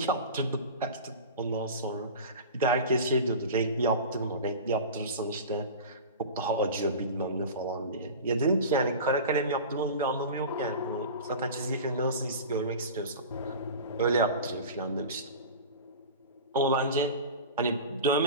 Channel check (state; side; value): inverted; both; correlation -0.33